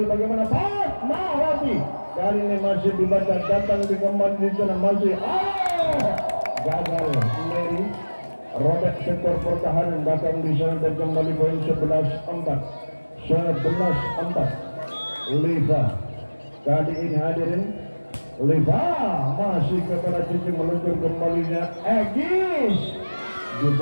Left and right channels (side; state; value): both; inverted; correlation -1.00